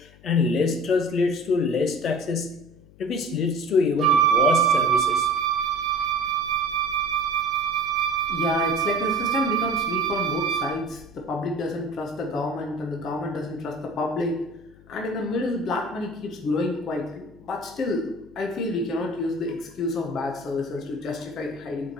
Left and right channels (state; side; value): noise; left; hum, 24 dB below the sound